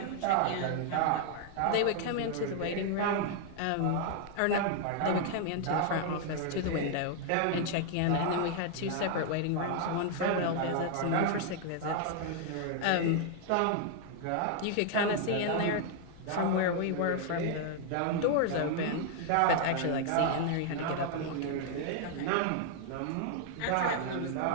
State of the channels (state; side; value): different; both; correlation 0.00